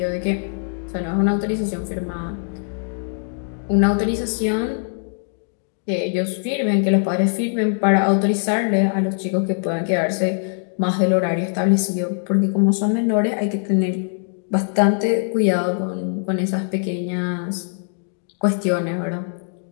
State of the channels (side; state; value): right; silent; 64 dB below the other